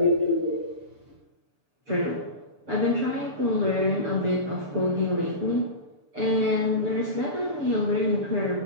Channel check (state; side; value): late; left; 6.9 ms